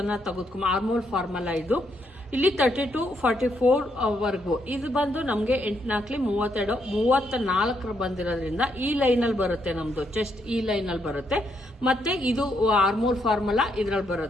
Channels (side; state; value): both; normal; correlation 0.76